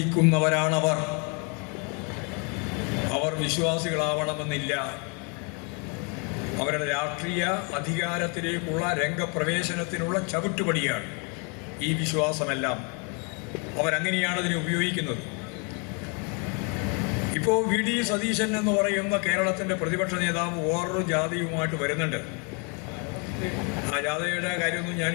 അവർ വിശ്വാസികളാവണമെന്നില്ല. അവരുടെ രാഷ്ട്രീയ അധികാരത്തിലേക്കുള്ള രംഗപ്രവേശനത്തിനുള്ള ചവിട്ടുപടിയാണ് ഈ വിശ്വാസമെല്ലാം. അവരങ്ങനെയാണ് അതിനെ ഉപയോഗിക്കുന്നത്. ഇപ്പോൾ വി ഡി സതീശൻ എന്ന് പറയുന്ന കേരളത്തിൻ്റെ പ്രതിപക്ഷ നേതാവ് വേറൊരു ജാഥയുമായിട്ട് വരുന്നുണ്ട്. ആ ജാഥയുടെ കാര്യമൊന്നും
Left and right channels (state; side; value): quieter; right; 34.9 dB